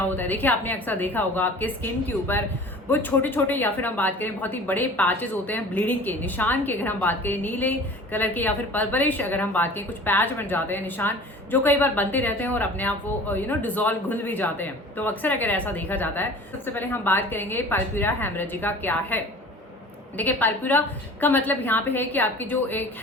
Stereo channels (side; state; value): both; normal; correlation 0.43